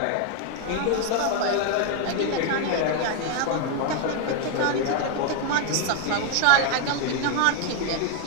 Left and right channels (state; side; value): different; both; correlation 0.01